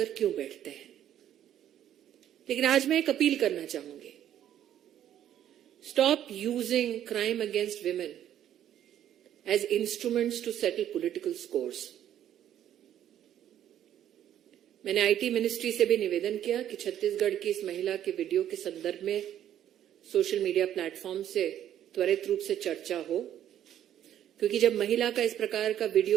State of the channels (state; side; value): quieter; left; 11.0 dB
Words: क्यों बैठते हैं। लेकिन आज मैं एक अपील करना चाहूंगी, stop using crime against women as instruments to settle political scores. मैंने आईटी मिनिस्ट्री से भी निवेदन किया कि छत्तीसगढ़ की इस महिला के वीडियो के संदर्भ में सोशल मीडिया प्लेटफॉर्म से त्वरित रूप से चर्चा हो, क्योंकि जब महिला का इस प्रकार का